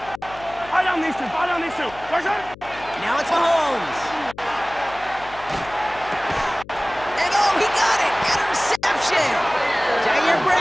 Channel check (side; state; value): left; noise; hum, 19 dB below the sound